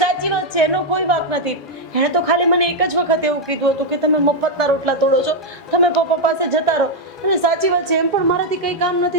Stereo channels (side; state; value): both; normal; correlation 0.00